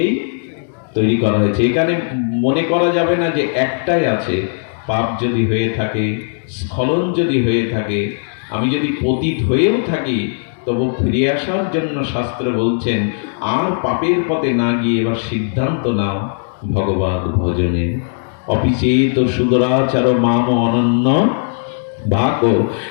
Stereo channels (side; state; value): right; silent; digital silence